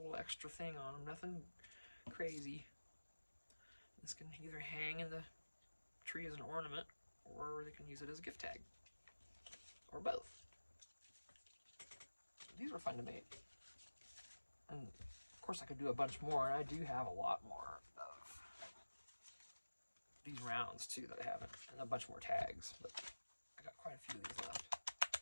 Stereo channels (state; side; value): inverted; both; correlation -1.00